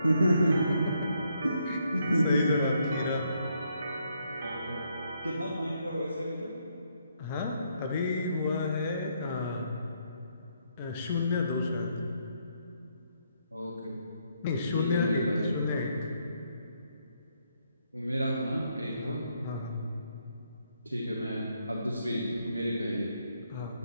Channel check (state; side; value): inverted; both; correlation -0.75